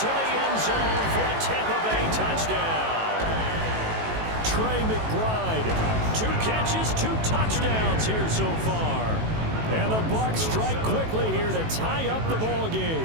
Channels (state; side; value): late; left; 18 ms